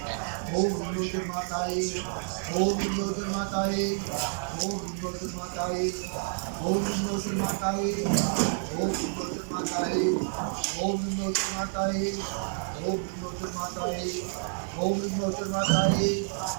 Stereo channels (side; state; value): left; silent; digital silence